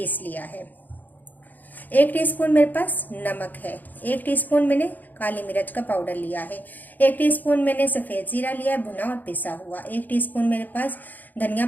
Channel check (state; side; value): late; right; 0.084 ms